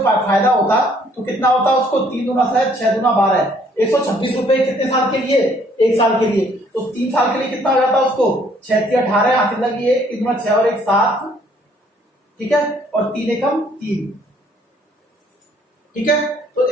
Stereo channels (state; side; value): normal; both; correlation 0.63